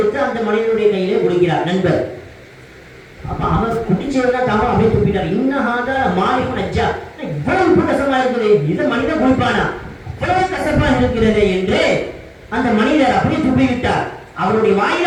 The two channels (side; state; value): both; identical; correlation 1.00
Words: அந்த மனிதனுடைய கையிலே குடிக்கிறார் நண்பர். அப்ப அவர் குடிச்சதுதான் தவறு, அப்படியே துப்பிட்டார். இன்னஹாத மாலிகுன் அஜ்ஜா, இவ்வளவு உப்பு கசப்பா இருக்குது, இதை மனிதன் குடிப்பானா, இவ்வளவு கசப்பா இருக்கிறது என்று அந்த மனிதர் அப்படியே துப்பி விட்டார். அவருடைய